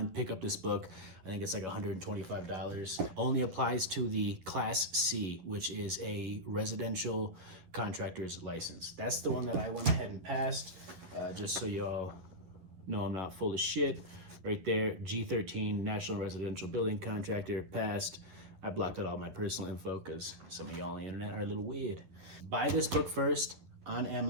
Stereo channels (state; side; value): late; left; 11 ms